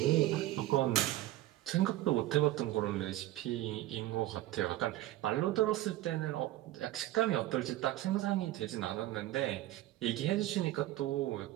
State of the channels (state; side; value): quieter; left; 15.3 dB